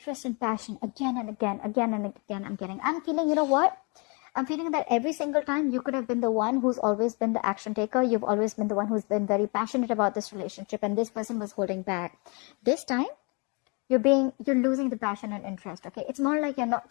and passion again and again. I'm feeling, you know what? I'm feeling that every single time you could have been the one who's always been the action taker. You've always been the one who's been very passionate about this relationship, and this person was holding back. This time, you're losing the passion and interest, okay? It's more like you're not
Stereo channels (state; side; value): quieter; right; 31.7 dB